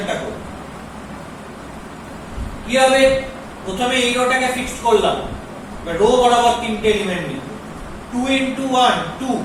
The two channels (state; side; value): identical; both; correlation 1.00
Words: করব কি হবে প্রথমে এই রোটাকে ফিক্সড করলাম রো বরাবর তিনটে এলিমেন্ট নিব 2 into 1 2